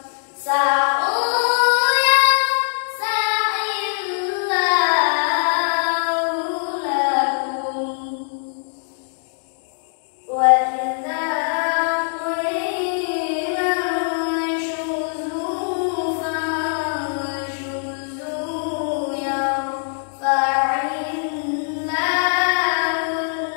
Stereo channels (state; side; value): silent; right; digital silence